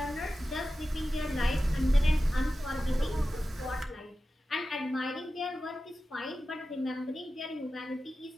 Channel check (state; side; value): normal; both; correlation 0.94